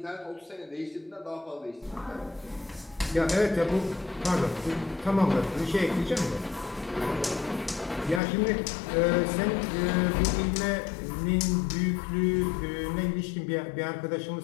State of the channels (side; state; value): right; drops out; at 8.2 s